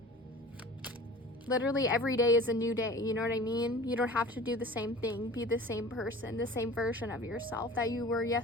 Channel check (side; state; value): both; normal; correlation 0.41